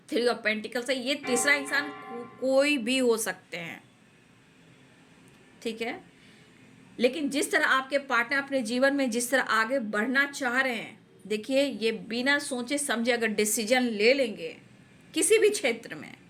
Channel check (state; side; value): identical; both; correlation 1.00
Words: 3 ऑफ पेंटिकल्स है, ये तीसरा इंसान कोई भी हो सकते हैं, ठीक है। लेकिन जिस तरह आपके पार्टनर अपने जीवन में जिस तरह आगे बढ़ना चाह रहे हैं, देखिए ये बिना सोचे समझे अगर डिसीजन ले लेंगे किसी भी क्षेत्र में